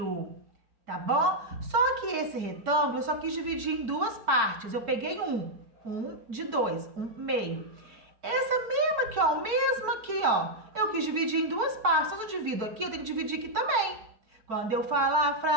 Tá bom? Só que esse retângulo eu só quis dividir em duas partes. Eu peguei um de 2, um meio. Essa mesma aqui, ó, eu quis dividir em duas partes. Se eu divido aqui, eu tenho que dividir aqui também. Quando eu falar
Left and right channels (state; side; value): late; left; 4.5 ms